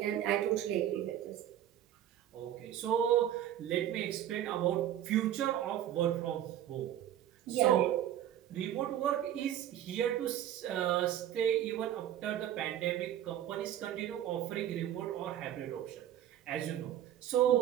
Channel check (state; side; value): quieter; left; 11.5 dB